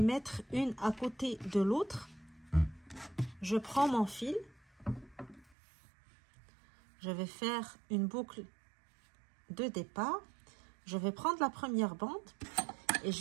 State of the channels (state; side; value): drops out; left; at 5.6 s